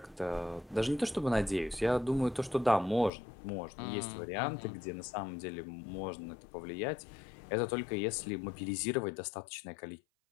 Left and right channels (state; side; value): drops out; right; at 3.1 s